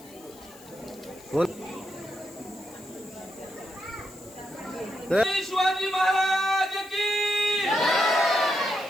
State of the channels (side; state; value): left; noise; hiss, 22 dB below the sound